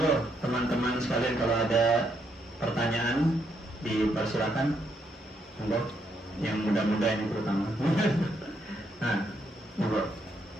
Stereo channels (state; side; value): normal; both; correlation 0.76